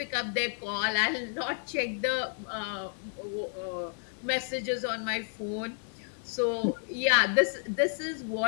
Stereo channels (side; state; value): right; silent; 57 dB below the other